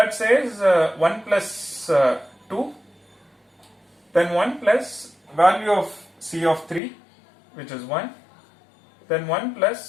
says 1 plus 2, then 1 plus value of C of 3, which is 1, then 1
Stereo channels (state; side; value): drops out; right; at 6.8 s